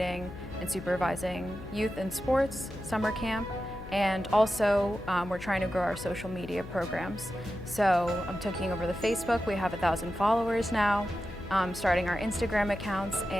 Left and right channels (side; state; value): left; noise; hum, 13 dB below the sound